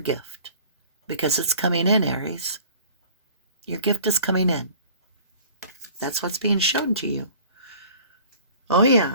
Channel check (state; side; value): inverted; both; correlation -0.48